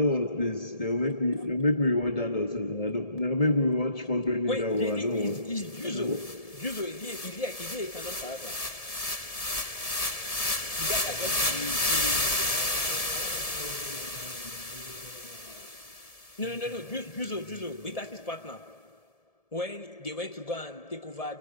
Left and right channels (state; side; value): late; right; 1.7 ms